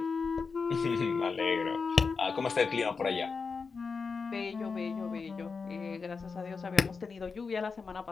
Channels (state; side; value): quieter; right; 5.0 dB